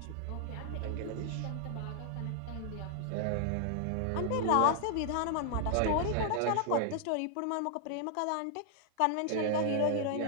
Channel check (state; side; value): different; both; correlation -0.01